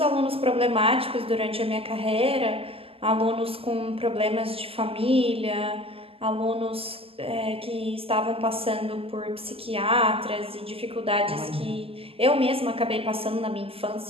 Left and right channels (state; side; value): late; left; 0.28 ms